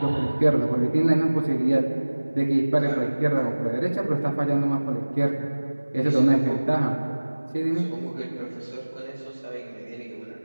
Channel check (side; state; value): both; inverted; correlation -1.00